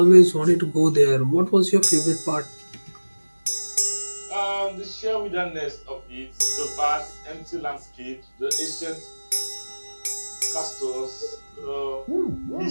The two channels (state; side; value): inverted; both; correlation -1.00